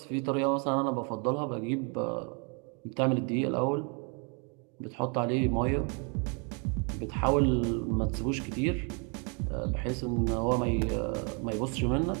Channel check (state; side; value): quieter; left; 36.2 dB